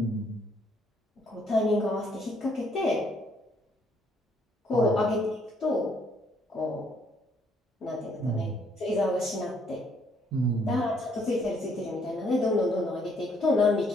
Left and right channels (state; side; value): normal; both; correlation 0.67